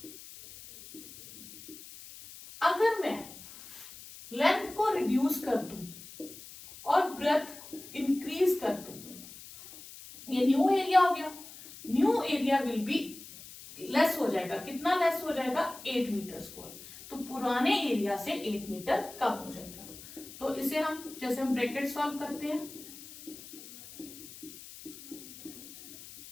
अगर मैं लेंथ को रिड्यूस कर दूं और ब्रेथ इंक्रीज कर दूं, ये न्यू एरिया हो गया। New area will be less हो जाएगा, कितना लेस हो जाएगा 8 मीटर स्क्वायर, तो पुराने एरिया से 8 मीटर कम हो जाएगा। तो इसे हम जैसे हम ब्रैकेट सॉल्व करते हैं,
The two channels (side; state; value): left; noise; hiss, 16 dB below the sound